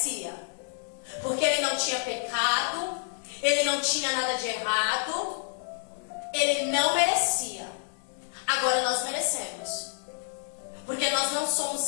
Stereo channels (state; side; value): silent; right; 59 dB below the other